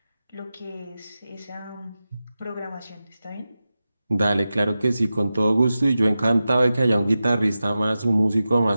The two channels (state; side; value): inverted; both; correlation -0.94